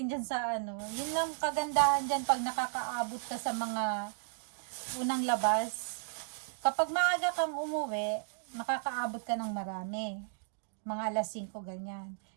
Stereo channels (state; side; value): silent; left; digital silence